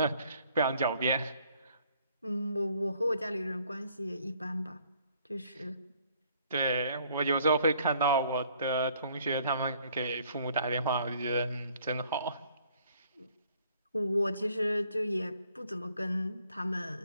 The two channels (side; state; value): both; inverted; correlation -0.62